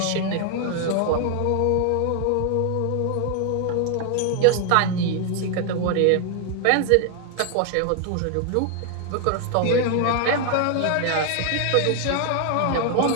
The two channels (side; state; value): both; different; correlation 0.00